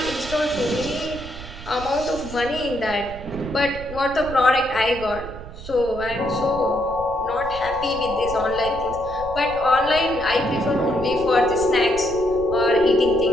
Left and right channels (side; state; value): right; noise; rumble, 13 dB below the sound